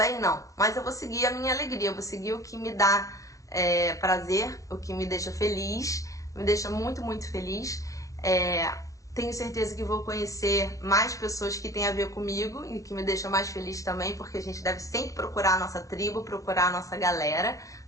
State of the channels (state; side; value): late; right; 0.16 ms